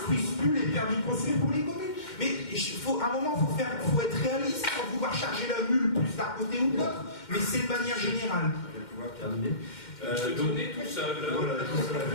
plus les permis de construire pour les communes. Mais à un moment, il faut être réaliste sans vouloir charger la mule plus d'un côté ou de l'autre, mais c'est de manière générale. Je vais pouvoir terminer. Donner tout seul. Voilà, tout seul.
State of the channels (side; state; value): right; late; 2.1 ms